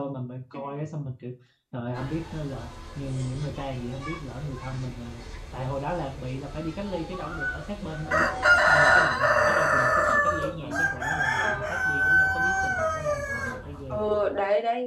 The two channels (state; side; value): identical; both; correlation 1.00